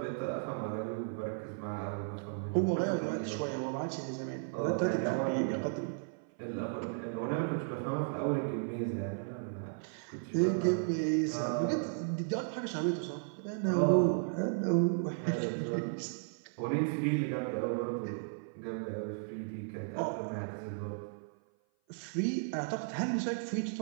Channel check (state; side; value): silent; left; 55 dB below the other